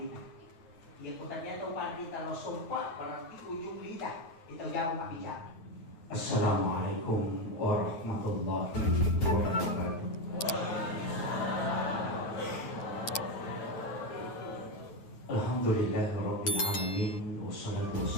Ya ku tadi atau pandrita lo sompa berarti ujung lidah itu jago mabicara. Assalamualaikum warahmatullahi wabarakatuh. Alhamdulillahirabbil alamin wassalatu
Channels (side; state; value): right; late; 9.3 ms